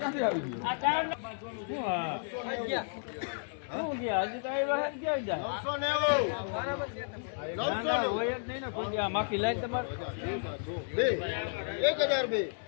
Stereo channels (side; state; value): right; silent; digital silence